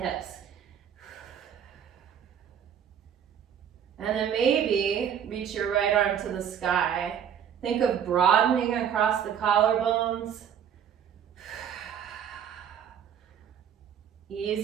And then maybe reach your right arm to the sky. Think of broadening across the collarbones.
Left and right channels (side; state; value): left; quieter; 8.6 dB